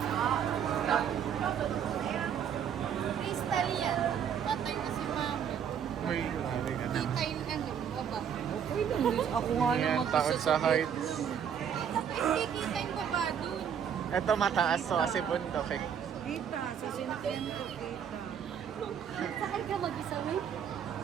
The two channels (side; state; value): left; quieter; 8.2 dB